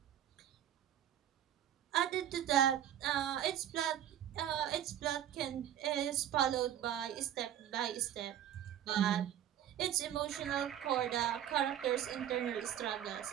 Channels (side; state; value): left; quieter; 10.9 dB